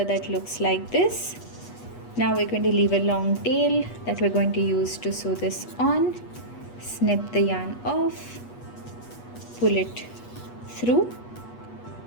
that looks like this. Now we're going to leave a long tail that we're going to use to sew this on. Snip the yarn off, pull it through,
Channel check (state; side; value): late; right; 8.3 ms